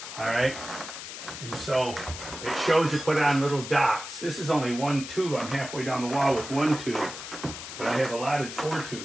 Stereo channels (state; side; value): noise; left; hiss, 10 dB below the sound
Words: All right. And so it shows you put on little dots. This is only 1 tube. I'm halfway down the wall with 1 tube, but I have allotted 4